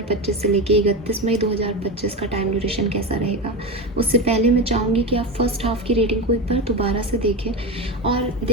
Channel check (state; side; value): normal; both; correlation 0.20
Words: से लेके 31 मई 2025 का टाइम ड्यूरेशन कैसा रहेगा। उससे पहले मैं चाहूँगी कि आप फर्स्ट हाफ की रेटिंग को एक बार दोबारा से देखें और